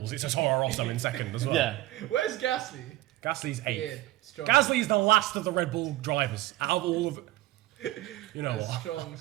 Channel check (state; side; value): quieter; left; 16.8 dB